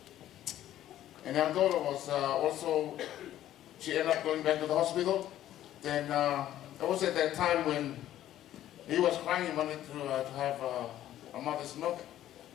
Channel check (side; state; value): right; quieter; 12.6 dB